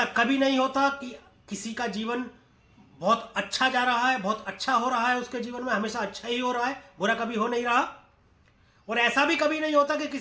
कभी नहीं होता कि किसी का जीवन बहुत अच्छा जा रहा है, बहुत अच्छा हो रहा है, उसके जीवन में हमेशा अच्छा ही हो रहा है, बुरा कभी हो नहीं रहा। और ऐसा भी कभी नहीं होता कि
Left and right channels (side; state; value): both; identical; correlation 1.00